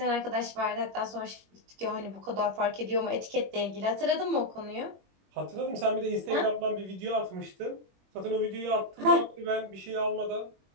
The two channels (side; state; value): left; late; 21 ms